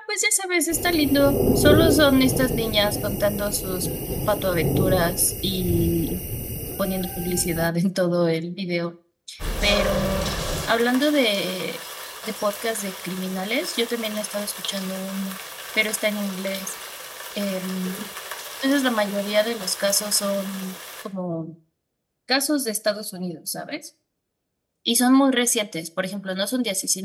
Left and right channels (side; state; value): both; identical; correlation 1.00